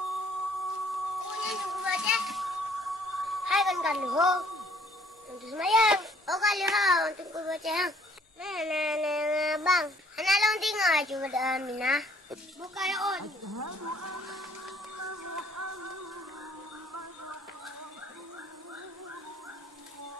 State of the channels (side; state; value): both; normal; correlation 0.61